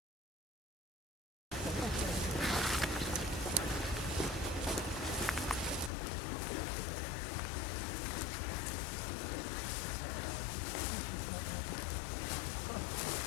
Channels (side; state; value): right; drops out; at 5.9 s